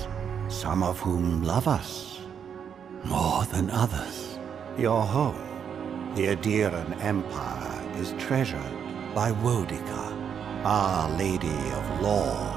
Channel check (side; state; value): left; quieter; 7.7 dB